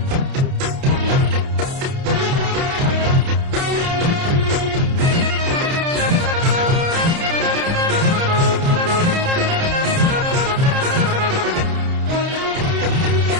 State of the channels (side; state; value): left; late; 30 ms